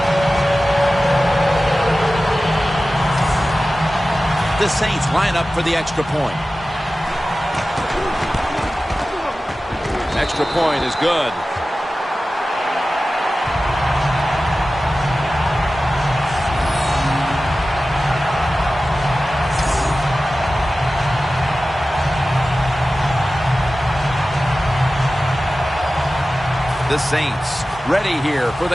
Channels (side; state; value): both; normal; correlation 0.95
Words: The Saints line up for the extra point. Extra point is good. The Saints ready here for